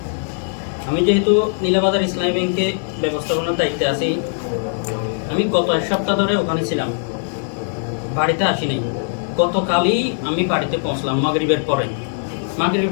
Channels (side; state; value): right; silent; digital silence